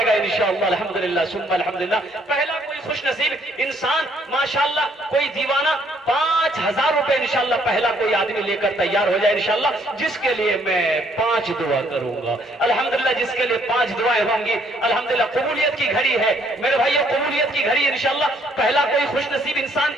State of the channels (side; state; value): both; normal; correlation 0.66